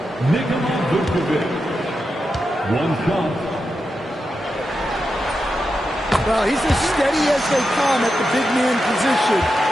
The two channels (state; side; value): normal; both; correlation 0.88